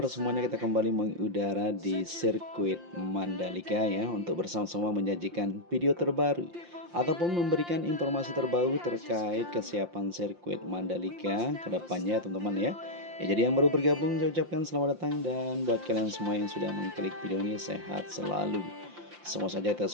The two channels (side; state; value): left; late; 5.7 ms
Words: semuanya? Kita kembali mengudara di sirkuit Mandalika ya, untuk bersama-sama menyajikan video terbaru ataupun memberikan informasi terbaru terkait kesiapan sirkuit Mandalika ke depannya, teman-teman ya. Ya, jadi yang baru bergabung saya ucapkan selamat datang, dan buat kalian semua yang sudah mengklik video ini, sehat selalu. Semua saja kita